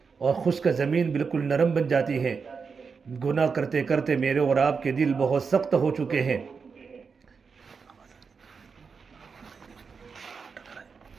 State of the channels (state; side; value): quieter; left; 5.4 dB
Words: اور خشک زمین بالکل نرم بن جاتی ہے۔ گناہ کرتے کرتے میرے اور آپ کے دل بہت سخت ہو چکے ہیں۔